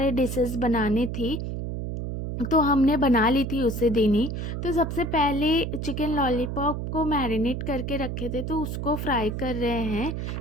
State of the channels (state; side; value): noise; right; hum, 4 dB below the sound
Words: डिशेस बनाने थी, तो हमने बना ली थी उसी दिन ही। तो सबसे पहले चिकन लॉलीपॉप को मैरिनेट करके रखे थे, तो उसको फ्राई कर रहे हैं।